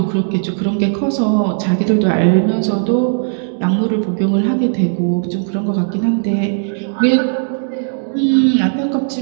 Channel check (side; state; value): left; silent; digital silence